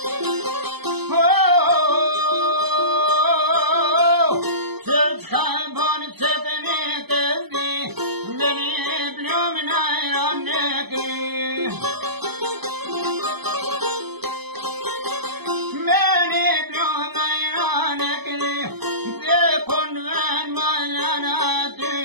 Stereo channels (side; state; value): left; late; 0.98 ms